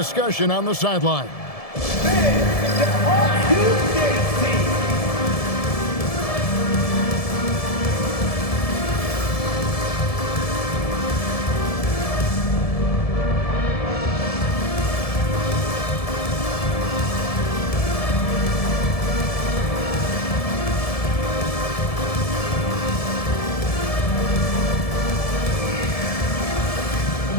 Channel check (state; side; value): late; right; 1.7 ms